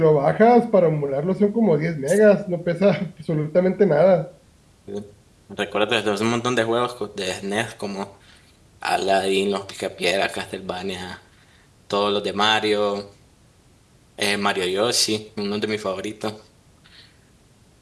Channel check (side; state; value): both; identical; correlation 1.00